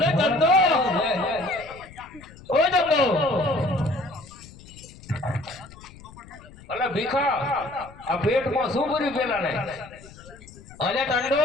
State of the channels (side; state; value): left; noise; rumble, 20 dB below the sound